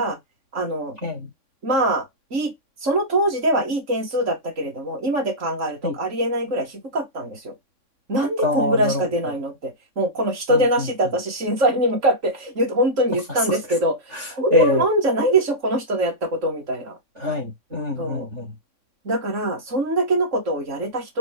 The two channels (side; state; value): left; late; 3.6 ms